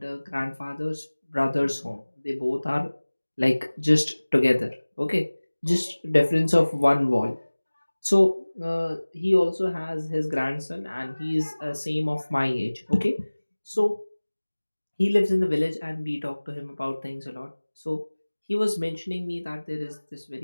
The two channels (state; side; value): inverted; both; correlation -1.00